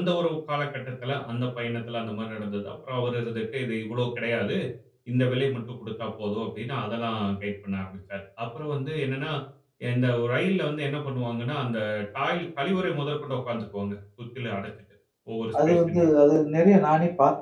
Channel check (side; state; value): both; identical; correlation 1.00